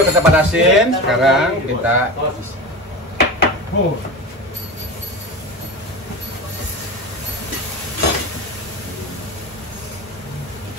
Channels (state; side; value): normal; both; correlation 0.27